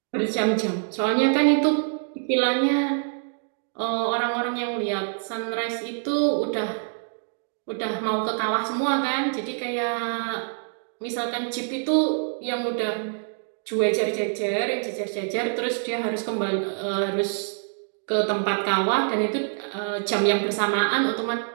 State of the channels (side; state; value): left; silent; digital silence